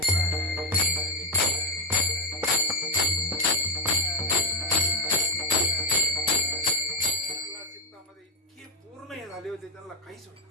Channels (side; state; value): both; normal; correlation 0.09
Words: चित्तामध्ये इतके पूर्ण हे झाले होते त्यांना काहीच होत.